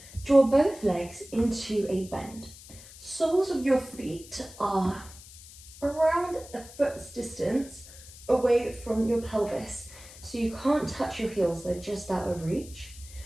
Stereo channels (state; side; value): noise; left; hiss, 18 dB below the sound